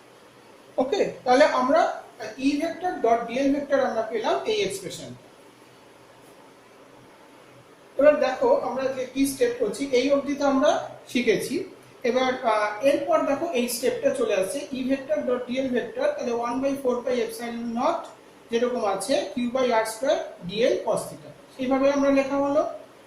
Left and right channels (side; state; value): both; identical; correlation 1.00